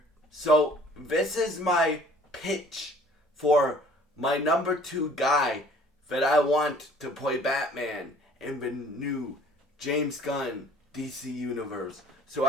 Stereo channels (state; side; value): normal; both; correlation 0.54